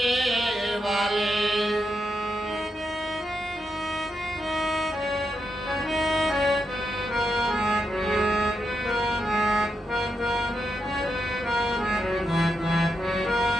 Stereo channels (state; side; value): normal; both; correlation 0.84